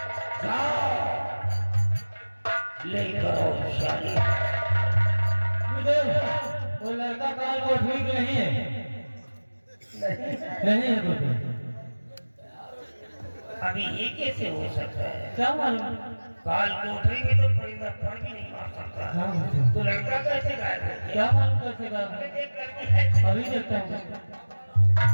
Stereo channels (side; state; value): both; inverted; correlation -1.00